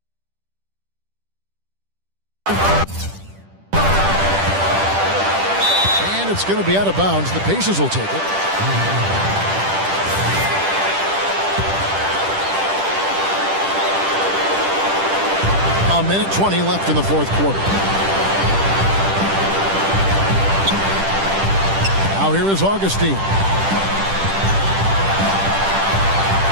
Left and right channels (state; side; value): late; left; 10 ms